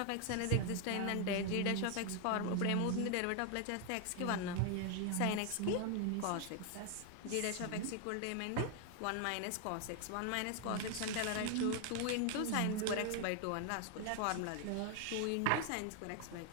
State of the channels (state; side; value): different; both; correlation 0.00